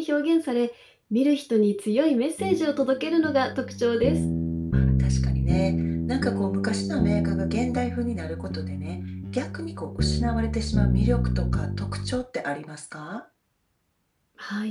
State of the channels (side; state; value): both; identical; correlation 1.00